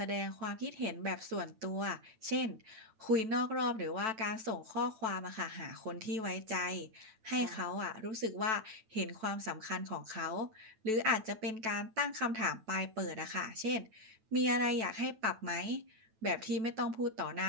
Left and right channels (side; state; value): left; late; 9.1 ms